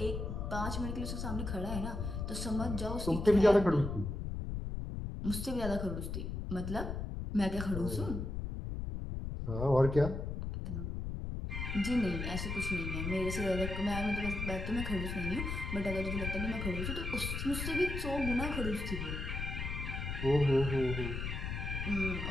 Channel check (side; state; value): left; noise; rumble, 4 dB below the sound